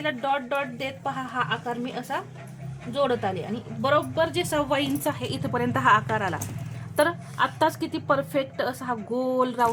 डॉट डॉट देत पहा हा आकार मी असा जोडत आले आणि बरोबर जे 1.25 इंच आहे इथपर्यंत हा आकार आला. तर आत्ताच किती परफेक्ट असा हा गोल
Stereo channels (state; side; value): identical; both; correlation 1.00